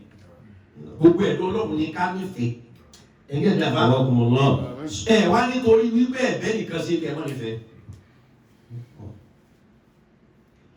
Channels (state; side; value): identical; both; correlation 1.00